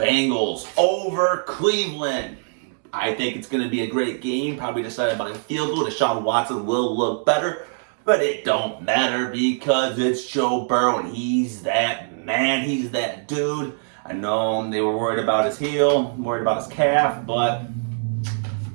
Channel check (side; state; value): left; silent; digital silence